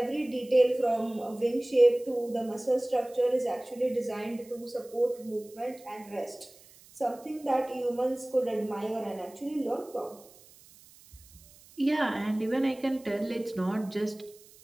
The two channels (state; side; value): noise; right; hiss, 24 dB below the sound